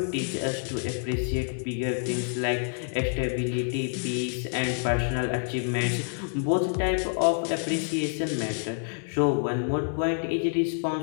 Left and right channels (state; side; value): silent; right; digital silence